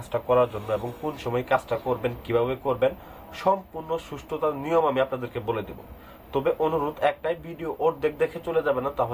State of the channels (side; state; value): both; identical; correlation 1.00